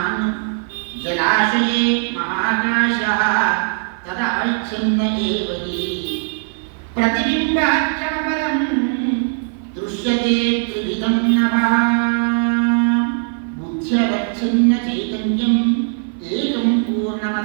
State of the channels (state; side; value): silent; left; 56 dB below the other